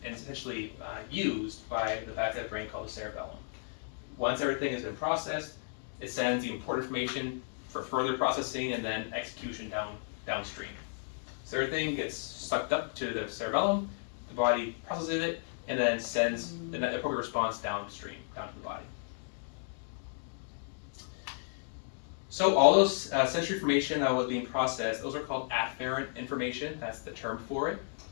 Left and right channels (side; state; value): right; silent; digital silence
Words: and essentially used by the back of the brain called the cerebellum. Once everything has been processed, it sends the important information for further processing and then execution downstream. So everything gets sucked up to the cerebellum, the body processes it, and then sends the appropriate response downstream, down to the body. So all those sensory information that was being processed, those are called afferent information. That's the term for it.